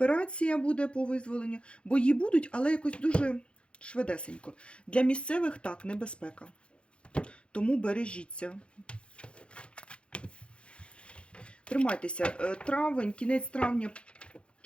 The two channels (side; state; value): right; late; 0.058 ms